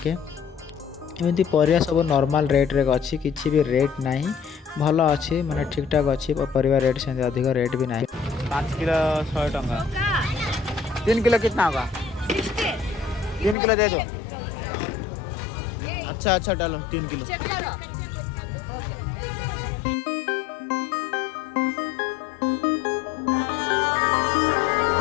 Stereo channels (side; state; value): right; drops out; at 13.6 s